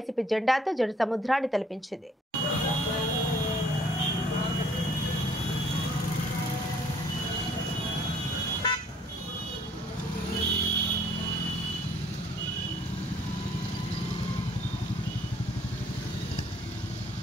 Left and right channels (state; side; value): normal; both; correlation 0.60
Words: జెండాతో జన సముద్రాన్ని తలపించింది.